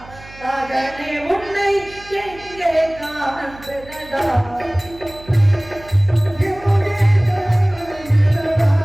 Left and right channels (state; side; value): noise; right; hum, 20 dB below the sound